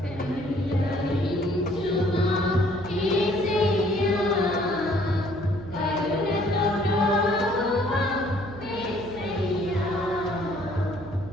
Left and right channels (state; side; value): noise; right; hum, 13 dB below the sound